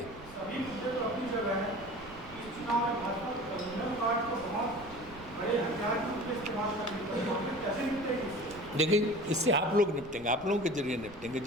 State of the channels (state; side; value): noise; right; rumble, 19 dB below the sound